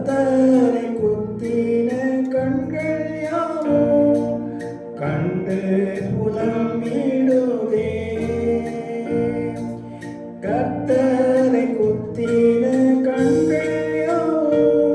குத்தின கண்கள் யாவும் கண்டு புலம்பிடுதே. கர்த்தரை குத்தின கண்கள்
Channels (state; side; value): identical; both; correlation 1.00